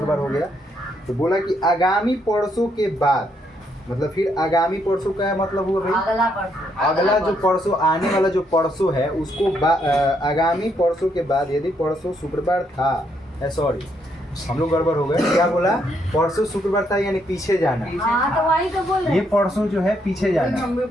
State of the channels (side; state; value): both; normal; correlation 0.74